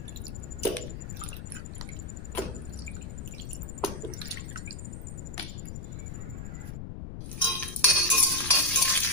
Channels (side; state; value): left; noise; rumble, 8 dB below the sound